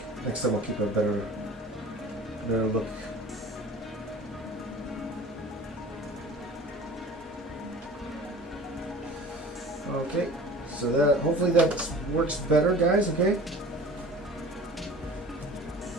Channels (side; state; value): both; normal; correlation 0.42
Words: Next time I'll keep a better look. Okay, so that hopefully that works better, guys. Okay.